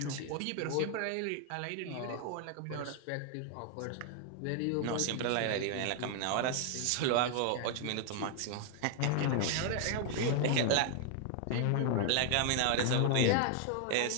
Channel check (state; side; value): different; both; correlation 0.00